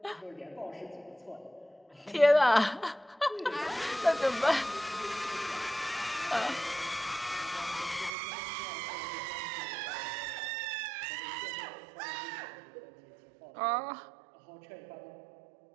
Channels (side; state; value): left; drops out; at 8.1 s